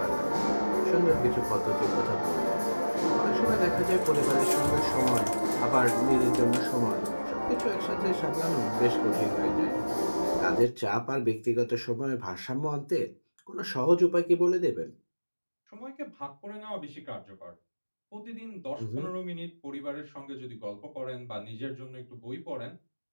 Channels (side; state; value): both; inverted; correlation -1.00